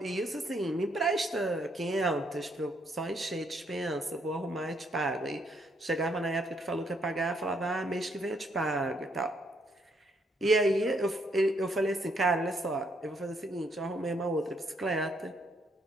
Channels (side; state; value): both; normal; correlation 0.72